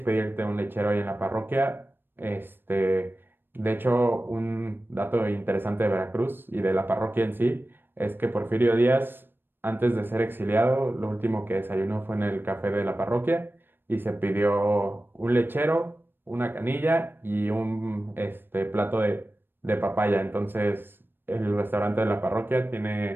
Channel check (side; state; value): left; late; 0.098 ms